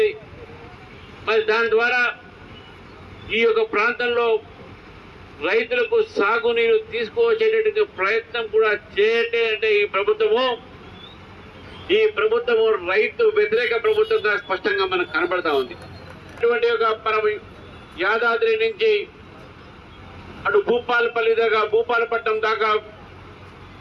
మరి దాని ద్వారా ఈ యొక్క ప్రాంతంలో రైతులకు సాగునీరు తీసుకువచ్చేటటువంటి ప్రయత్నం కూడా చేయటే అంటే ఈ ప్రభుత్వము రైతు వ్యతిరేక ప్రభుత్వంగా స్పష్టంగా మనకు కనబడతా ఉంది. ఇటువంటి ఒక మనం యాదాద్రి నుంచి అటు భూపాలపల్లి దాకా, భూపాలపట్నం దాకా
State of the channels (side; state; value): both; identical; correlation 1.00